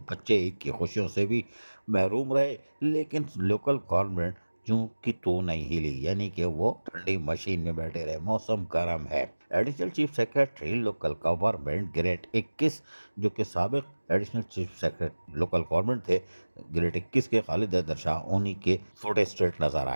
बच्चे ईद की खुशियों से भी महरूम रहे, लेकिन लोकल गवर्नमेंट जू की तो नहीं हिली, यानी कि वो ठंडी मशीन में बैठे रहे। मौसम गर्म है। Additional chief secretary local government grade 21, जो कि साबिक additional chief secretary local government थे ग्रेड 21 के खालिद हैदर शाह, उन्हीं के फोटे स्ट्रेट नजर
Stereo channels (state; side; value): inverted; both; correlation -1.00